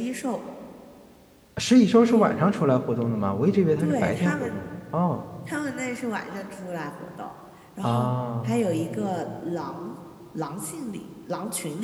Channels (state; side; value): identical; both; correlation 1.00